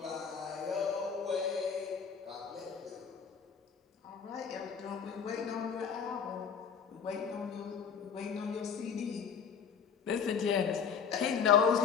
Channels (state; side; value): quieter; right; 6.8 dB